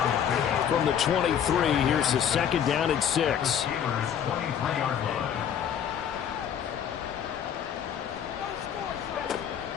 From the 23, here's the 2nd down and 6.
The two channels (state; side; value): quieter; right; 8.8 dB